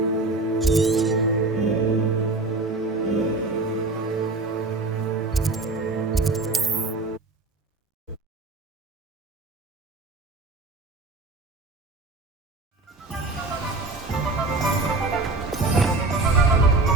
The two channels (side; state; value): left; quieter; 3.3 dB